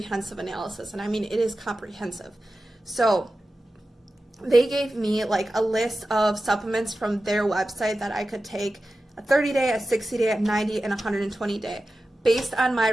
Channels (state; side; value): normal; both; correlation 0.94